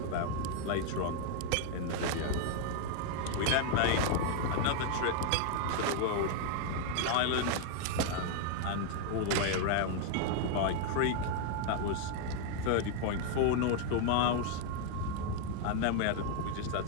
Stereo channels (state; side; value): different; both; correlation 0.00